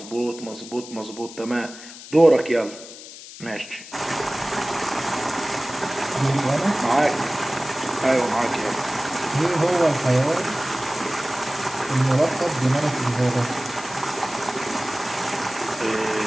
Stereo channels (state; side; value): noise; left; hiss, 15 dB below the sound